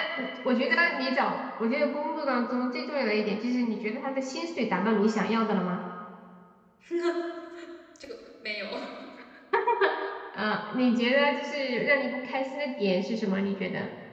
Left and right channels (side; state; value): both; identical; correlation 1.00